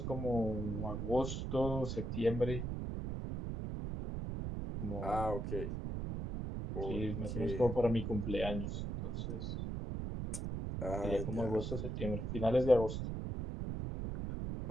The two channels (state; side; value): noise; right; rumble, 3 dB below the sound